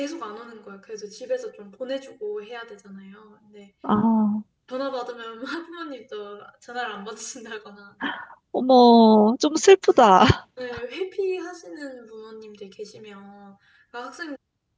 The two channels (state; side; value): identical; both; correlation 1.00